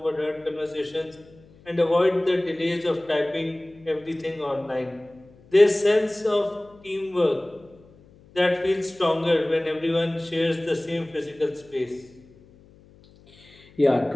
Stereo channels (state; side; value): noise; left; hum, 26 dB below the sound